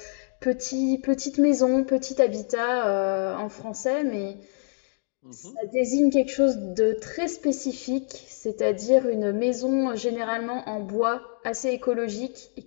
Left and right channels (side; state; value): right; silent; 60 dB below the other